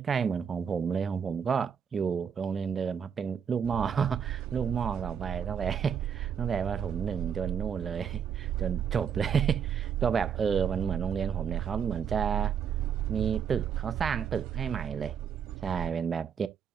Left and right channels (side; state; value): left; quieter; 7.5 dB